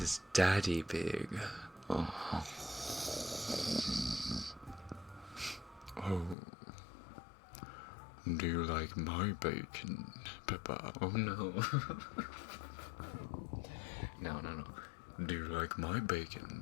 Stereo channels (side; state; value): right; drops out; at 6.4 s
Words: Daddy Pig. Oh. Oh. Do you like my bacon, Peppa? Oh no. No. Do you like my